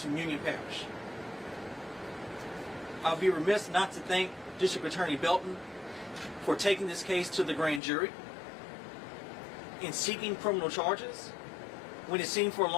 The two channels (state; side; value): drops out; right; at 7.8 s